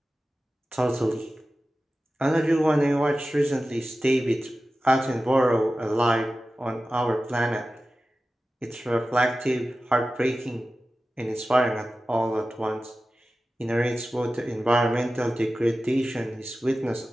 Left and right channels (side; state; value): both; normal; correlation 0.95